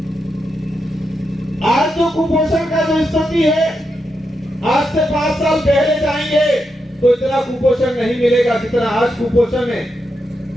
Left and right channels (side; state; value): both; normal; correlation 0.85